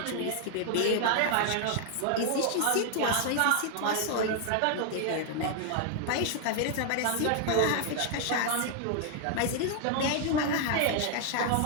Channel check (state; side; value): different; both; correlation 0.00